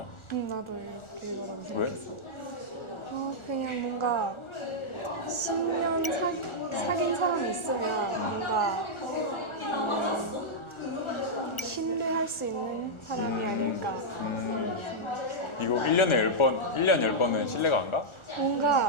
응, 나도 이거라고 왜? 생각했어. 그냥 뭔가 10년 사귄 사람이 있으면 뭔가 신뢰할 수 있는 사람이 아닐까. 이거 1년에 10번, 1년 10번은 신뢰가 안 가?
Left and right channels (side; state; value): right; late; 1.4 ms